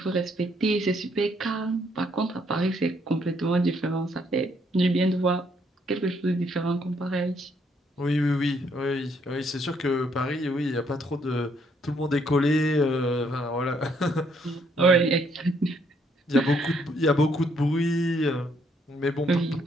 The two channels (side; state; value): both; normal; correlation 0.70